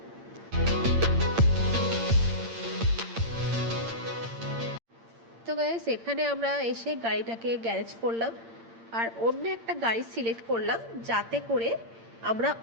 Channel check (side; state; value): left; late; 8.7 ms